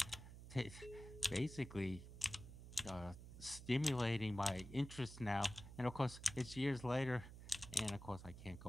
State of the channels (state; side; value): noise; right; hum, 13 dB below the sound